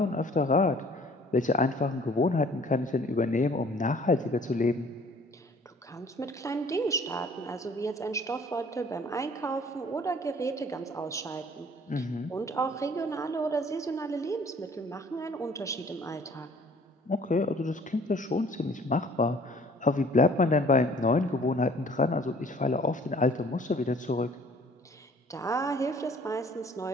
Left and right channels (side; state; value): both; normal; correlation 0.54